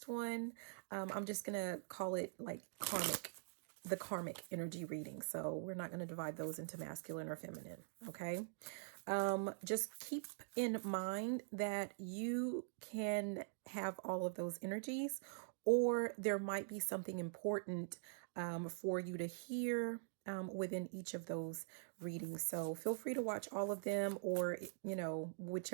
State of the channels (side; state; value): left; silent; digital silence